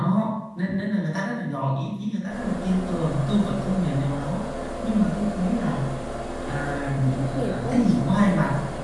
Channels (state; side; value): identical; both; correlation 1.00